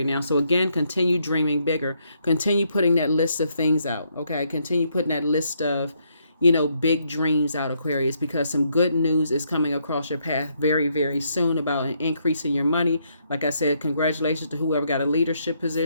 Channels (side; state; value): both; inverted; correlation -0.74